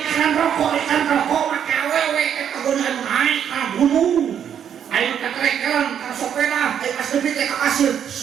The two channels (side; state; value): left; quieter; 8.8 dB